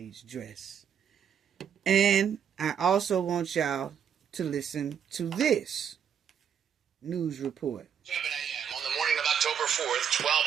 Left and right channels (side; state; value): left; quieter; 8.1 dB